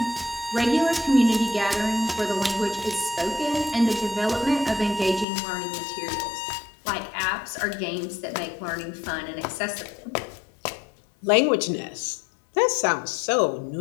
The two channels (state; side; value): drops out; right; at 5.2 s